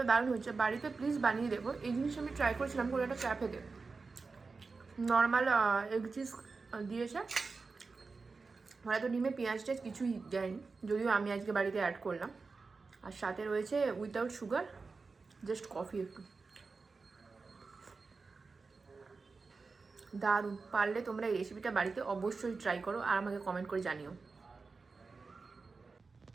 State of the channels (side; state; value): left; quieter; 4.3 dB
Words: দারুণ হচ্ছে। বাড়িতে প্লিজ বানিয়ে দেবো। এই জিনিস আমি ট্রাই করেছিলাম কোনো একটা ক্যাফেতে, নর্মাল এগ চিজ দিয়েছে, হয়তো ডিমে পেঁয়াজ টেজ কিছুই দেয়নি, যদিও আমি আজকে বাড়িতে অ্যাড করলাম। আর সাথে রয়েছে উইথাউট সুগার, জাস্ট কফি একটু। দারুণ। পারলে তোমরা এই রেসিপিটা বাড়িতে অবশ্যই ট্রাই করো আর আমাকে কমেন্ট করে জানিও।